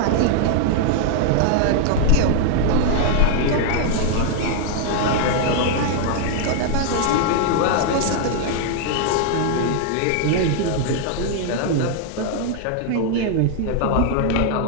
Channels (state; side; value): different; both; correlation 0.00